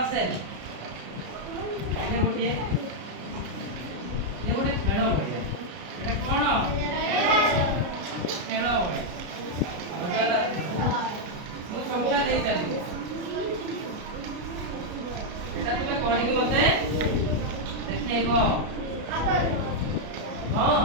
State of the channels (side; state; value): left; late; 33 ms